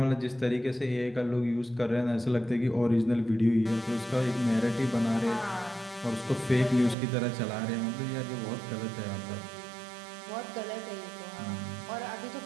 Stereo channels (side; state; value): left; drops out; at 7.0 s